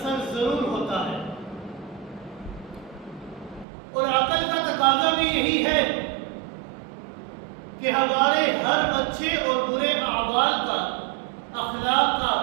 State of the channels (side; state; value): left; drops out; at 3.7 s